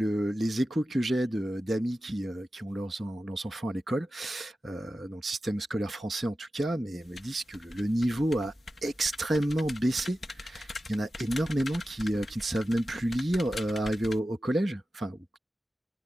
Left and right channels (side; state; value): both; normal; correlation 0.93